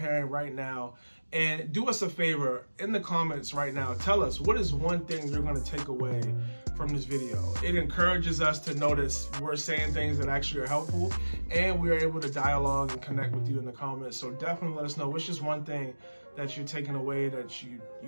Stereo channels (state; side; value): inverted; both; correlation -1.00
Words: right now. And do us a favor, in the comments right now, tell us, what is one thing you're going to take away from this video? It encourages us to notice we're saying things that actually are helpful, and we're able to dialogue and connect with you in the comments. So definitely let us know what's just one thing that you're taking away that you